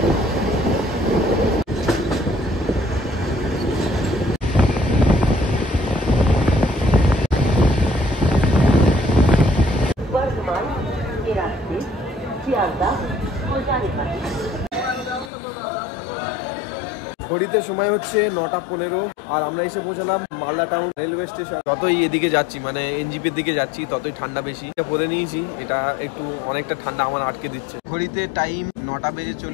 ঘড়িতে সময় হচ্ছে 9:15 আর আমরা এসে পৌঁছালাম মালদা টাউন রেলওয়ে স্টেশন। যতই এদিকে যাচ্ছি মানে এনজিপির দিকে যাচ্ছি ততই ঠান্ডা বেশি। পরে নিয়েছি, এটা একটু অনেকটা ঠান্ডা আমার আটকে দিচ্ছে। ঘড়িতে টাইম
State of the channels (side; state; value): right; drops out; at 15.3 s